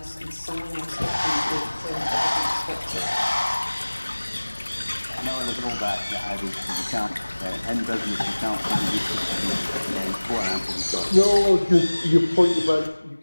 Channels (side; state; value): both; inverted; correlation -1.00